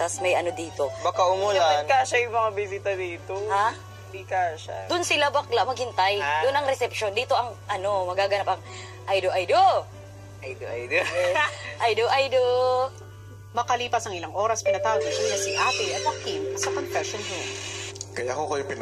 may ano dito. Baka umulan. Dapat kasya yung mga bisita dito. Ha? Hindi kasya. Doon sila bakla maghintay. Ha? Doon ang reception. Dito ang ano, magaganap ang Aido. Aido. Aido. Makalipas ang ilang oras, pinatawag ni Kuya si Ate at Joaquin sa confession room. Kaya ako kayo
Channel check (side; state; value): both; identical; correlation 1.00